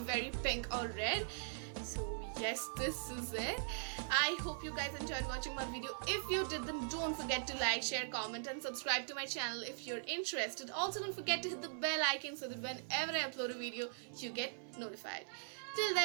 pink or red. So yes, this is it. I hope you guys enjoyed watching my video. If you did, then don't forget to like, share, comment and subscribe to my channel if you're interested. Also, don't forget to hit the bell icon so that whenever I upload a video, you get notified. Till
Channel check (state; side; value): silent; left; 50 dB below the other